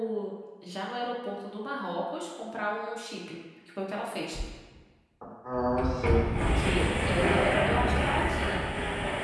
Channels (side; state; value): both; identical; correlation 1.00